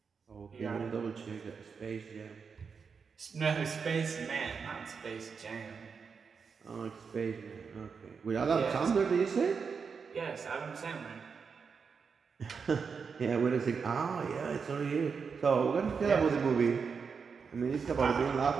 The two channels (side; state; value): left; quieter; 5.7 dB